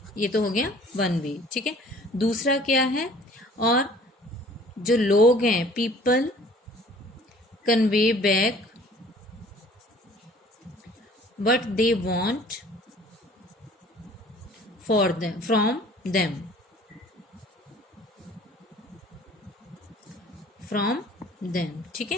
ये तो हो गया वन वे, ठीक है। दूसरा क्या है, और जो लोग हैं people convey back what they want for them from them, ठीक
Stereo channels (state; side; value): normal; both; correlation 0.51